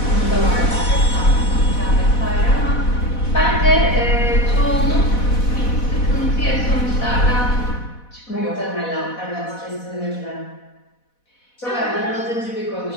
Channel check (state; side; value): late; right; 4.1 ms